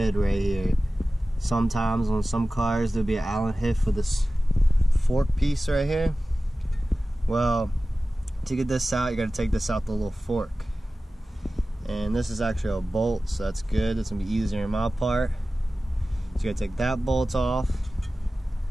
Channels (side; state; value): both; normal; correlation 0.96